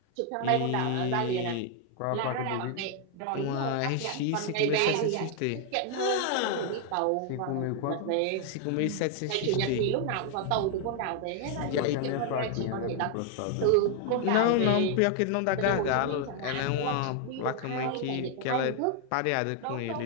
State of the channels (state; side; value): different; both; correlation 0.00